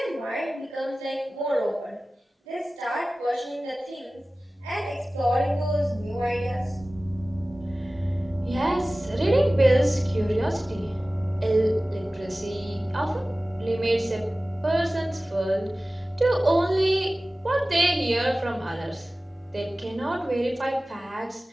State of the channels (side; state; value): both; normal; correlation 0.97